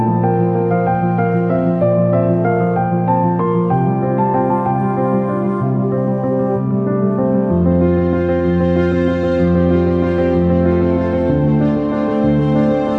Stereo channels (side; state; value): both; identical; correlation 1.00